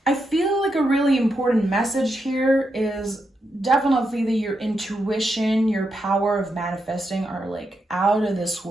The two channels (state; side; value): normal; both; correlation 0.84